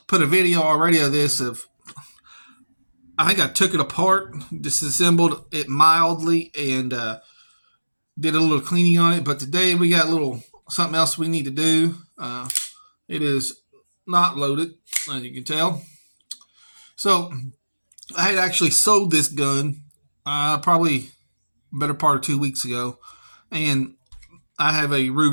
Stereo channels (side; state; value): both; inverted; correlation -1.00